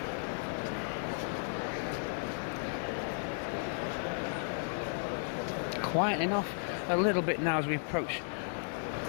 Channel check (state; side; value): silent; right; digital silence